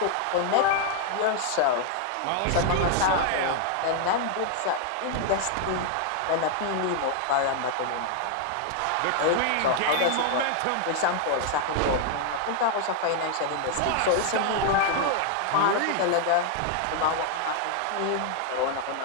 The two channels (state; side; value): different; both; correlation 0.00